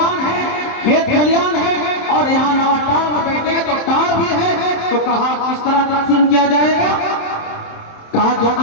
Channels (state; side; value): late; right; 27 ms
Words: ہے، کھیت کھلیان ہے، اور یہاں نوٹار بیٹھے تو ٹار بھی تو کہا کس طرح تقسیم کیا جائے گا؟ کہا جو